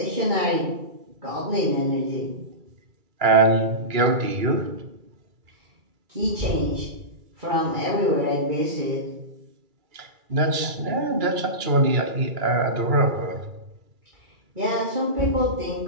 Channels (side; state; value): left; late; 2.3 ms